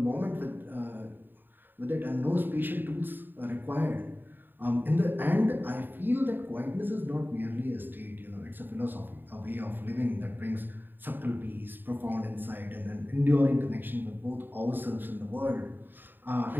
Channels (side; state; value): left; late; 0.093 ms